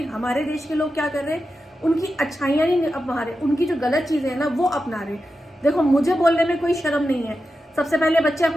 हमारे देश के लोग क्या कर रहे हैं? उनकी अच्छाइयां नहीं अपना रहे, उनकी जो गलत चीजें हैं ना वो अपना रहे। देखो, मुझे बोलने में कोई शर्म नहीं है। सबसे पहले बच्चे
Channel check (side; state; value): both; normal; correlation 0.90